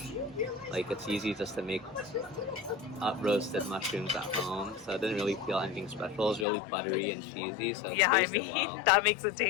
Like, it's easy just to make up roasted mushrooms at home, so I didn't really feel anything special. It was really buttery and cheesy, so it tasted well. That makes it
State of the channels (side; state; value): right; drops out; at 6.5 s